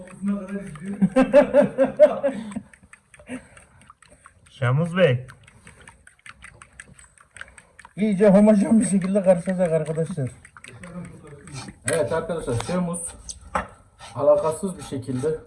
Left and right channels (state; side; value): identical; both; correlation 1.00